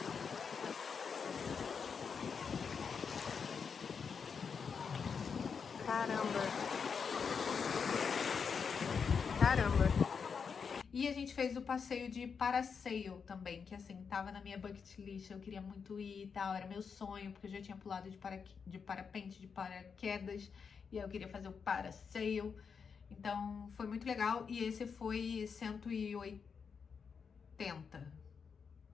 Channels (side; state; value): right; quieter; 6.0 dB